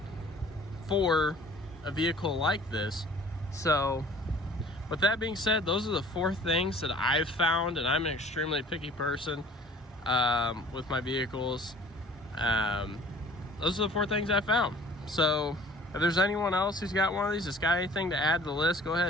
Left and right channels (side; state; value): both; normal; correlation 0.50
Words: for a vehicle like this. So with that being said, those are the 4 things that I've found, and I'm an extremely picky person with my vehicles. Those are the 4 things I found. So if there's anyone else who's got one of these that's got anything to add to the list, go